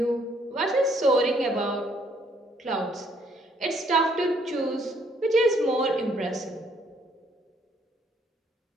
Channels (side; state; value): both; normal; correlation 0.66